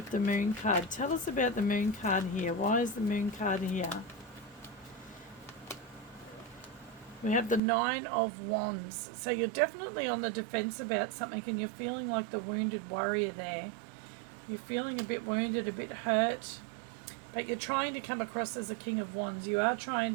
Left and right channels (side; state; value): left; drops out; at 7.6 s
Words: the moon card. Tell us about the moon card here. Why is the moon card here? We have the Nine of Wands. So you're definitely on the defense about something, and you're feeling like the wounded warrior there. You're feeling a bit wounded, a bit hurt, but you're trying to come across as a King of Wands. You're trying